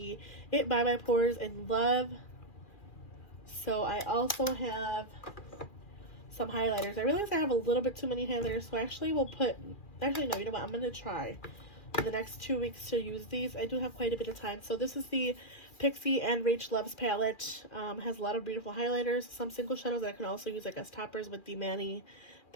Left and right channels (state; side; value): late; right; 2.4 ms